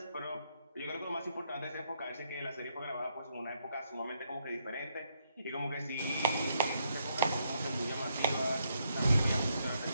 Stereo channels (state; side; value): inverted; both; correlation -0.75